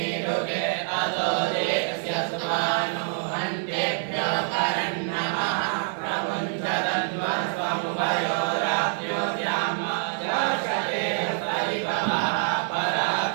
अतो देवस्य सुत्वानो हन्तेभ्यो करन्नमः प्रमुञ्चदन्वस्वमुभयोराप्यो द्याम जाशते हस्तरिभवः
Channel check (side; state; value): left; silent; digital silence